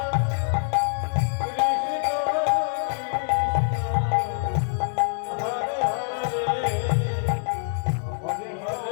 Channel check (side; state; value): right; silent; digital silence